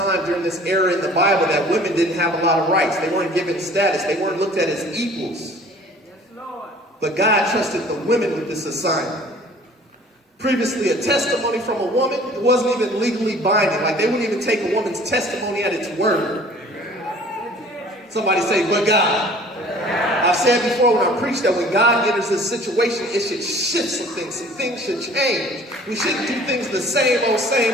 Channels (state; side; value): normal; both; correlation 0.50